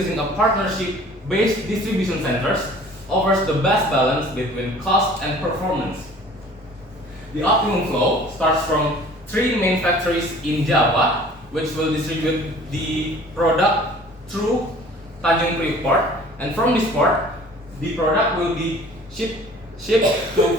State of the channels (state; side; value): normal; both; correlation 0.49